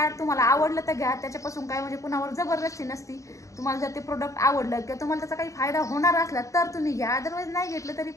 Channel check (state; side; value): late; right; 0.15 ms